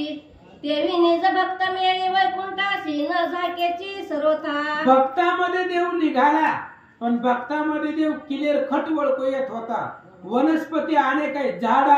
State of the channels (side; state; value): both; identical; correlation 1.00